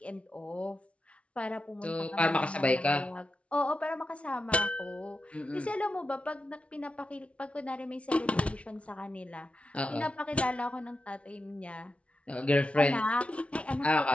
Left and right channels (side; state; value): right; late; 0.062 ms